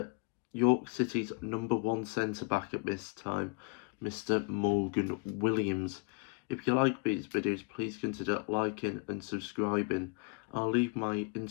City's number one centre-back at this time, Mr. Morgan Williams. If you like these videos, please consider liking and subscribing. I'll leave my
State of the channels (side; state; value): right; quieter; 32.6 dB